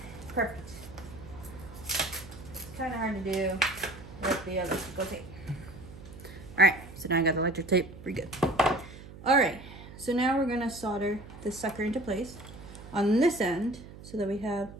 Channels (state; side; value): noise; right; hum, 16 dB below the sound